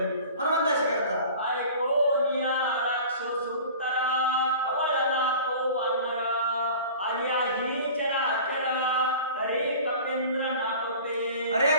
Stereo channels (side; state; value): both; inverted; correlation -0.41